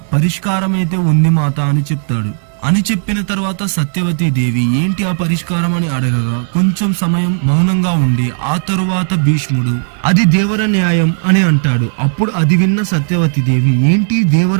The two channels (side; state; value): left; silent; digital silence